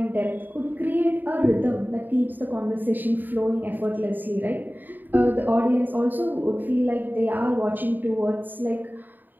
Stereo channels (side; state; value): left; late; 0.090 ms